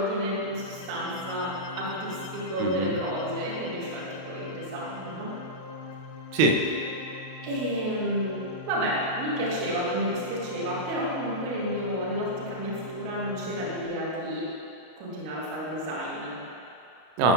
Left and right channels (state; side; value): late; left; 32 ms